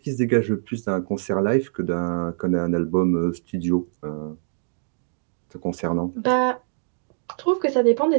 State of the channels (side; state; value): left; silent; digital silence